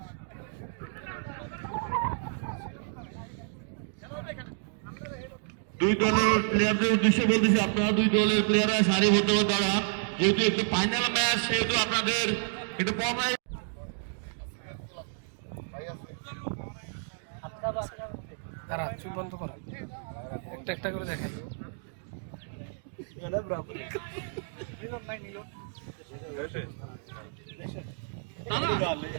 দুই দলের প্লেয়ারদের উদ্দেশ্যে বলতেছি, আপনারা দুই দলের প্লেয়াররা সারিবদ্ধভাবে দাঁড়ান। যেহেতু একটু ফাইনাল ম্যাচ, সেহেতু আপনাদের একটু তারা চুপ বন্ধ করা, একটা একটা করে দেখাই।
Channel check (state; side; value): silent; left; digital silence